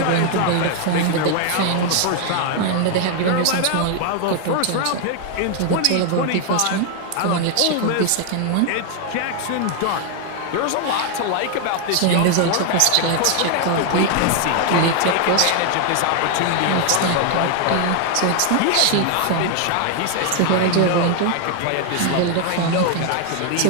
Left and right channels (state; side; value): different; both; correlation 0.00